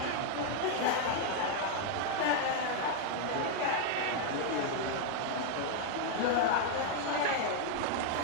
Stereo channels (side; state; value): both; different; correlation 0.00